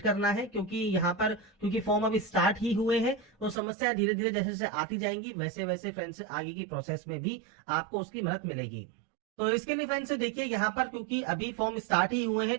करना है, क्योंकि यहाँ पर क्योंकि फॉर्म अभी स्टार्ट ही हुए हैं तो समस्याएं धीरे धीरे जैसे जैसे आती जाएंगी वैसे वैसे फ्रेंड्स आगे की प्रोसेस में भी आपको उसकी मदद मिलेगी। तो इसके लिए फ्रेंड्स देखिए यहाँ पर क्योंकि अभी फॉर्म स्टार्ट ही हुए हैं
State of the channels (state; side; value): drops out; left; at 3.6 s